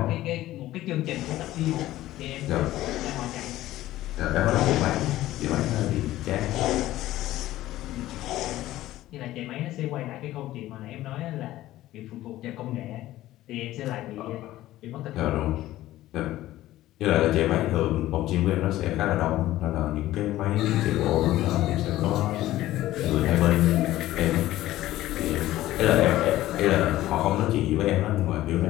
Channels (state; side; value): quieter; right; 15.2 dB